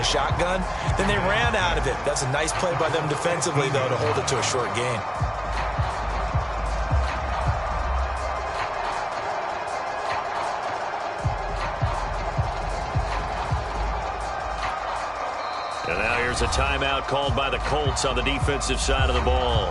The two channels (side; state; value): both; identical; correlation 1.00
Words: shotgun. Then they ran out of it. That's a nice play by them defensively, though, to hold it to a short gain. And now here's a timeout called by the Colts on the defensive side of the